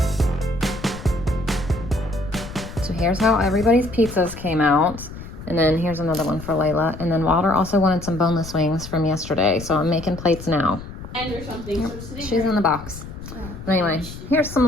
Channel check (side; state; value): left; noise; rumble, 12 dB below the sound